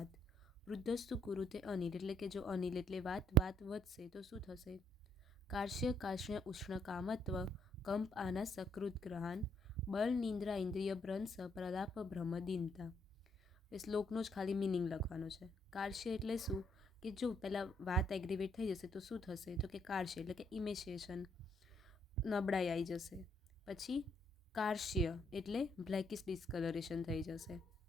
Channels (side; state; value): both; normal; correlation 0.70